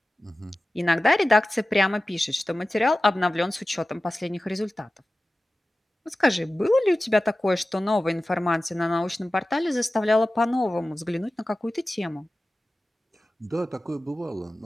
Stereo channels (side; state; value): both; normal; correlation 0.96